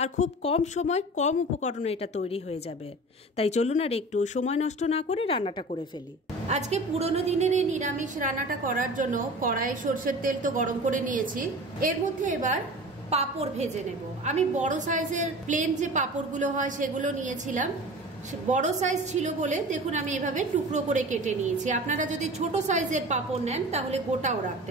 খুব কম সময় কম উপকরণে এটা তৈরি হয়ে যাবে। তাই চলুন আর একটু সময় নষ্ট না করে রান্নাটা করে ফেলি। আজকে পুরনো দিনের এই নিরামিষ রান্নাটা করার জন্য কড়াইয়ে সরষের তেল তো গরম করে নিয়েছি। এর মধ্যে এবার পাঁপড় ভেজে নেব। আমি বড় সাইজের প্লেন যে পাঁপড়গুলো হয় সেগুলো নিয়েছিলাম। বড় সাইজ ছিল বলে দেখুন আমি এভাবে টুকরো করে কেটে নিয়েছি। আপনারা যদি ছোট সাইজের পাঁপড় নেন তাহলে গোটাও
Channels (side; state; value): both; normal; correlation 0.37